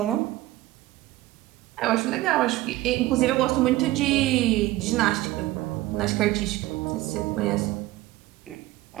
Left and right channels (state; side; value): quieter; left; 17.3 dB